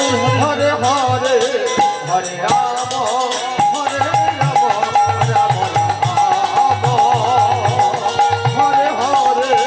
হরে হরে হরে রাম হরে রাম রাম রাম হরে হরে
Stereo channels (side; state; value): both; identical; correlation 1.00